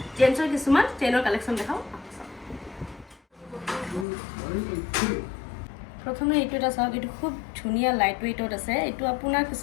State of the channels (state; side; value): drops out; right; at 4.0 s